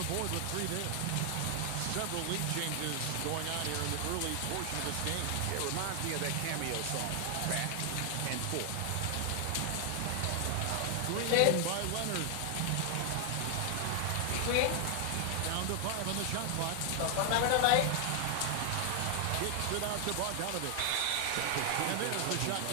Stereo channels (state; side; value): different; both; correlation 0.00